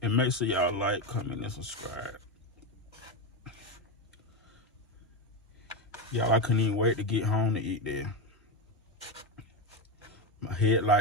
And make sure y'all like, comment, and subscribe. Y'all, I couldn't even wait to get home to eat there. My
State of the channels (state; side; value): normal; both; correlation 0.13